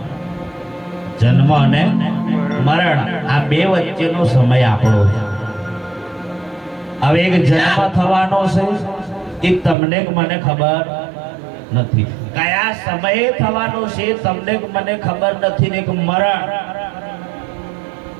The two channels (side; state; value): left; drops out; at 9.8 s